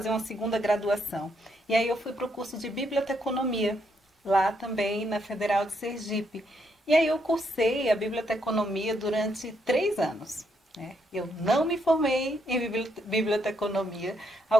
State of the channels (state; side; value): normal; both; correlation 0.76